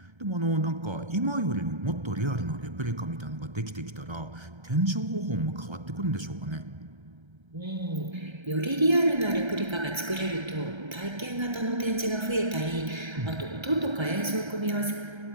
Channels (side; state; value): left; late; 1.3 ms